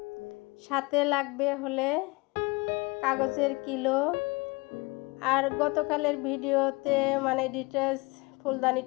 সাথে লাগবে হলে কাগজের কিলো। আর গতকালের ভিডিওতে মানে ডিটেলস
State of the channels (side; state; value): right; quieter; 25.7 dB